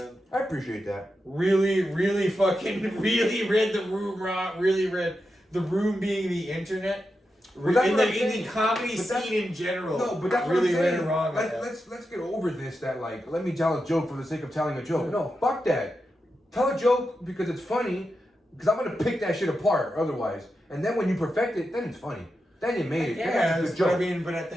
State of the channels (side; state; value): both; normal; correlation 0.88